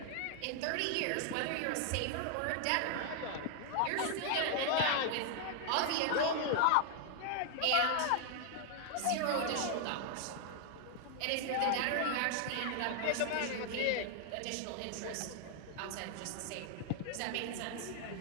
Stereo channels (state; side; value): different; both; correlation 0.00